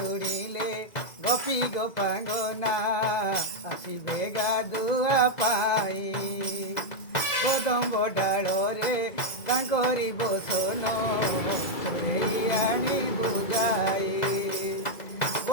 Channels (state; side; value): late; right; 2.0 ms